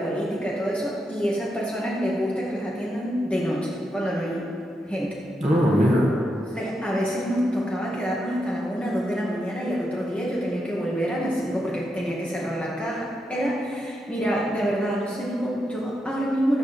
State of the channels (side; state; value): both; normal; correlation 0.84